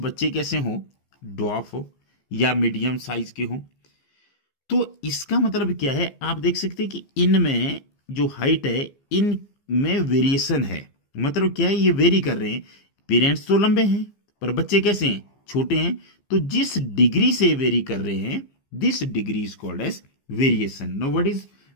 कैसे हो, ड्वार्फ हो या मीडियम साइज के हो। तो इसका मतलब क्या है? आप देख सकते हैं कि इनमें जो हाइट है इनमें वेरिएशन है। मतलब क्या है? ये वेरी कर रहे हैं। पेरेंट्स तो लंबे हैं पर बच्चे कैसे हैं? छोटे हैं। तो जिस डिग्री से वेरी कर रहे हैं this degree is called as variation. Now what is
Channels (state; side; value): late; right; 15 ms